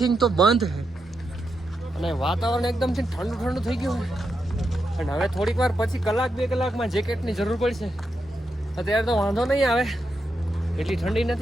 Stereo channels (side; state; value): both; normal; correlation 0.85